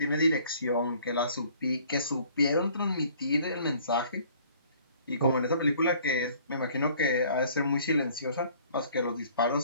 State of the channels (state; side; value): inverted; both; correlation -0.56